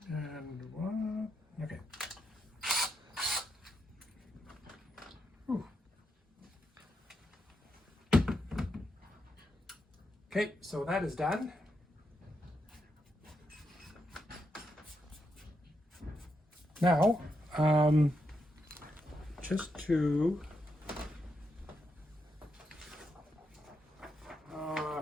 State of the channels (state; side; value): normal; both; correlation 0.83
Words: And one. Okay. Whew. Okay, so that is done. Now, just to